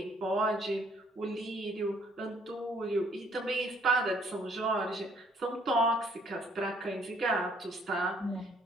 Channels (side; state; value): both; normal; correlation 0.64